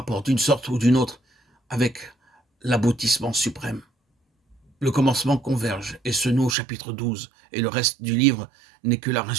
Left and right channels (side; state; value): left; drops out; at 6.6 s